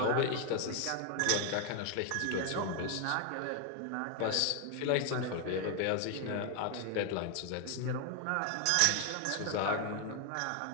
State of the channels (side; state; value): both; different; correlation 0.00